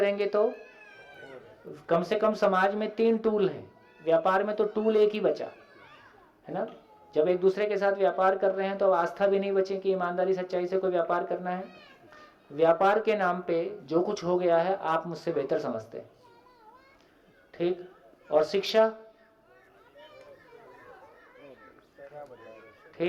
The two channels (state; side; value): identical; both; correlation 1.00